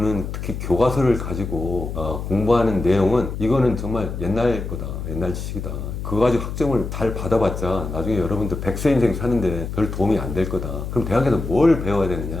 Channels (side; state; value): left; noise; hum, 6 dB below the sound